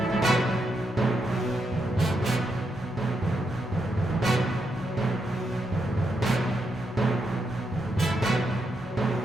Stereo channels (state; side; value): normal; both; correlation 0.82